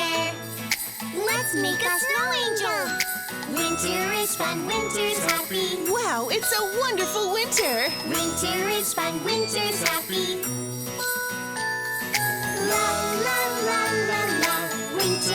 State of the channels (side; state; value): both; identical; correlation 1.00